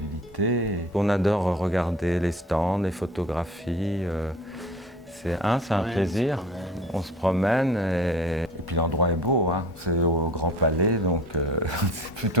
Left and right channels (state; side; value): normal; both; correlation 0.43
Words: On adore regarder les stands, les photographies. C'est un plaisir, on se promène et puis l'endroit est beau, hein. C'est au Grand Palais, donc c'est